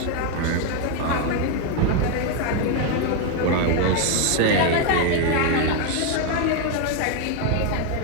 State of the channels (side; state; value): both; different; correlation 0.01